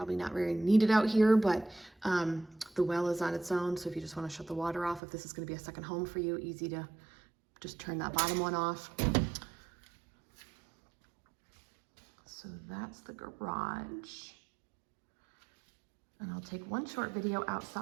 not very needed out here, but the well is on its own. So if you just want to shut the water off, if this is going to be a second home for you, easy to just turn that bottom one off. So that's the garage. And I'll take one short video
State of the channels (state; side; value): drops out; left; at 5.0 s